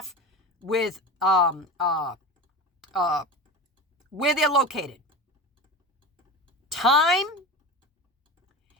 with where they're located. Time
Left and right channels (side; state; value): both; normal; correlation 0.28